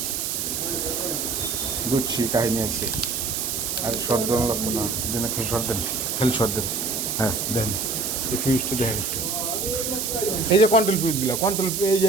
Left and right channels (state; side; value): noise; right; hiss, 1 dB below the sound